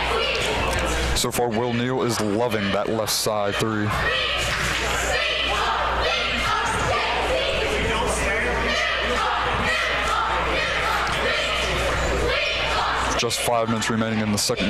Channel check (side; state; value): both; identical; correlation 1.00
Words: So far, Will Neal is loving that left side 3. Just 5 minutes remaining in the